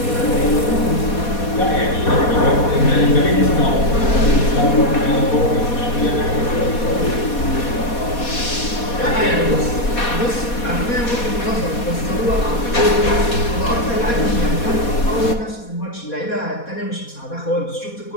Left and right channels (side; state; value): right; late; 4.2 ms